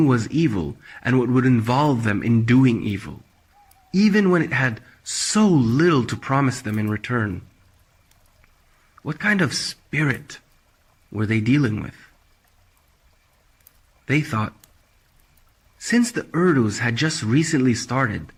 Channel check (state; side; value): identical; both; correlation 1.00